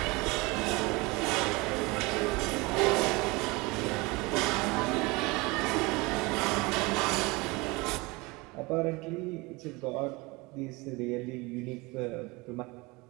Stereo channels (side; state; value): left; quieter; 24.7 dB